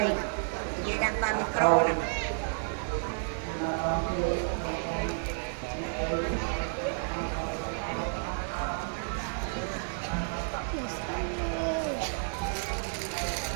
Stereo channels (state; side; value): silent; left; digital silence